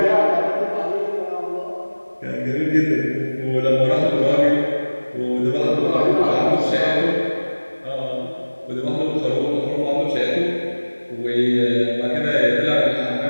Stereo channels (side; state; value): both; inverted; correlation -1.00